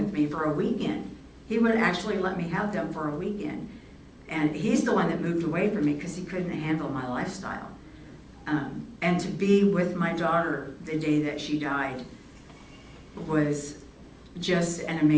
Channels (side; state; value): both; identical; correlation 1.00